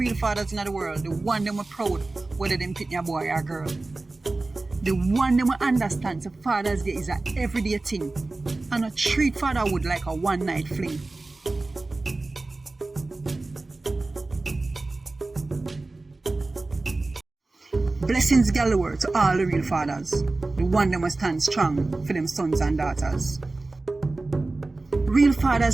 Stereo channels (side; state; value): left; quieter; 3.2 dB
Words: fathers in the world. The one them are proud, whether them pick a boy or girl. The one them understands that Father's Day is an everyday thing and not treat fatherhood like a one-night fling. Blessings galore to all the real fathers, the one them will stand strong for them sons and daughters. Real